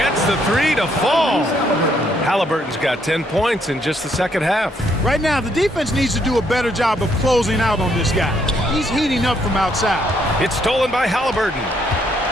the 3 to fall. Halliburton's got 10 points in just the second half. Right now, the defense needs to do a better job of closing out on this guy. He's heating up from outside. It's stolen by Halliburton.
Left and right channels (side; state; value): both; normal; correlation 0.71